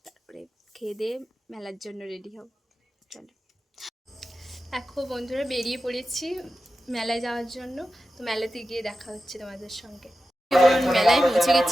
তারপরে খেয়ে দিয়ে মেলার জন্য রেডি হব। চলো, এখন বন্ধুরা বেরিয়ে পড়েছি মেলায় যাওয়ার জন্য। তো মেলাতে গিয়ে দেখা হচ্ছে তোমাদের সঙ্গে। মেলায় পৌঁছে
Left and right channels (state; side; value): normal; both; correlation 0.92